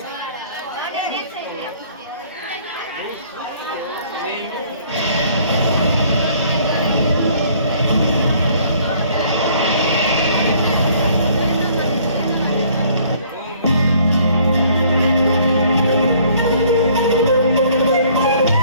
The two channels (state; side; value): inverted; both; correlation -0.59